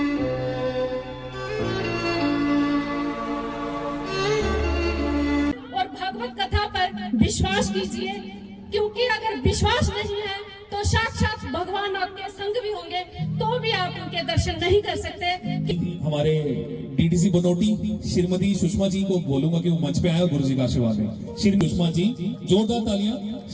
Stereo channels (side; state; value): both; identical; correlation 1.00